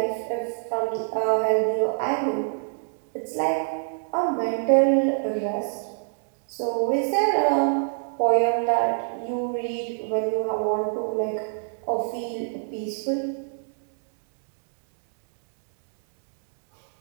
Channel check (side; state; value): left; silent; digital silence